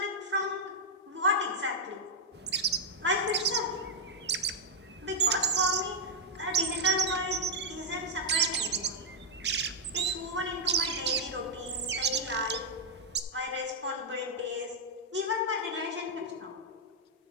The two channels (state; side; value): normal; both; correlation -0.05